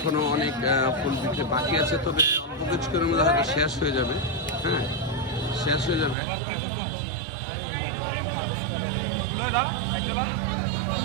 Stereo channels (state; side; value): drops out; left; at 6.2 s